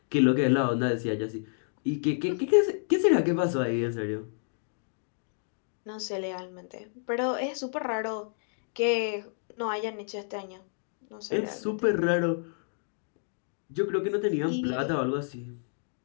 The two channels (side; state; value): right; silent; digital silence